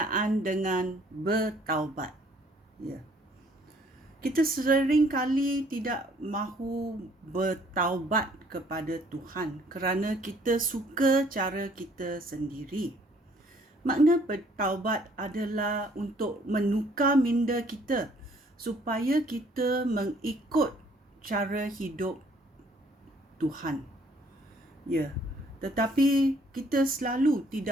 dengan bertaubat. Kita sering kali tidak mahu bertaubat kepada Tuhan kerana kita suka cara kita sendiri. Makna bertaubat adalah untuk menukar minda kita supaya kita mengikut cara hidup Tuhan. Tetapi kita selalu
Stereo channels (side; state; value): both; normal; correlation 0.61